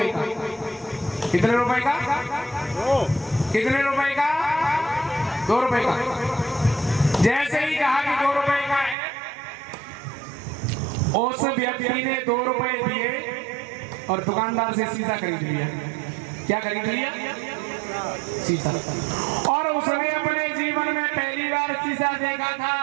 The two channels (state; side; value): drops out; left; at 9.0 s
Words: का। कितने रुपए का? कितने रुपए का? 2 रुपए का। जैसे ही कहा कि 2 रुपए का है, उस व्यक्ति ने 2 रुपए दिए और दुकानदार से शीशा खरीद लिया। क्या खरीद लिया? शीशा। और उसने अपने जीवन में पहली बार शीशा देखा था